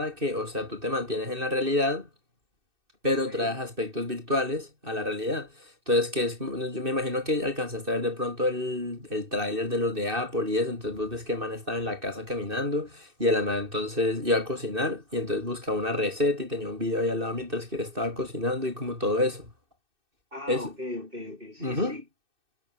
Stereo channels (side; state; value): left; late; 2.6 ms